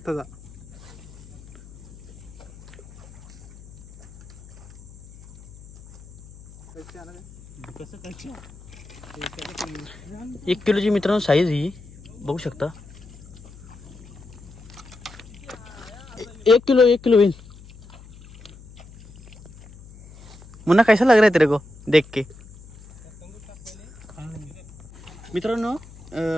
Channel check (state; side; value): noise; left; hum, 20 dB below the sound